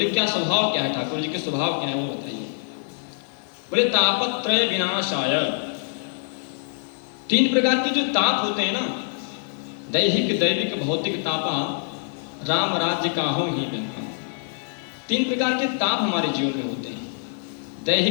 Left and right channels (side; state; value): right; silent; digital silence